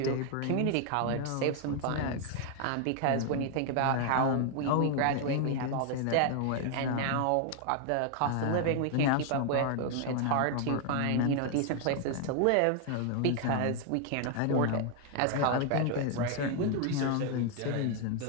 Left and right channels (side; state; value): both; different; correlation 0.00